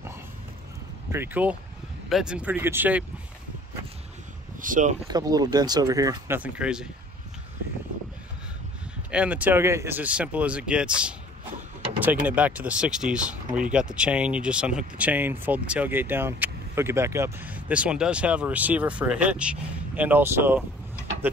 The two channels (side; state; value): both; normal; correlation 0.52